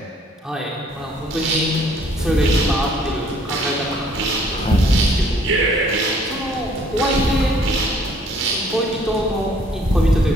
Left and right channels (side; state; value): both; normal; correlation 0.60